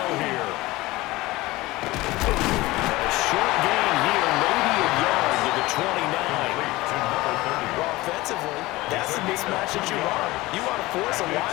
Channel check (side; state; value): right; quieter; 19.7 dB